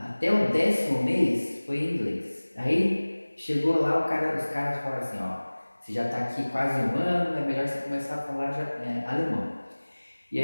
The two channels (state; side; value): inverted; both; correlation -1.00